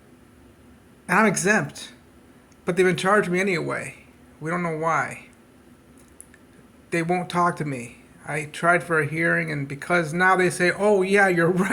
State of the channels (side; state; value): both; identical; correlation 1.00